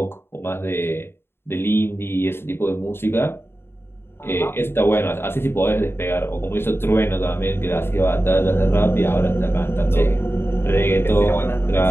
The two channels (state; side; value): late; right; 0.11 ms